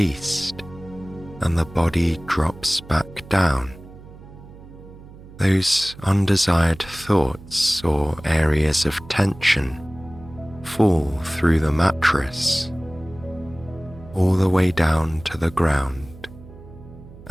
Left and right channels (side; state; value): right; noise; hum, 19 dB below the sound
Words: and the body drops back down, those undesired thoughts or areas of tension fall through the mattress, all the way down to the ground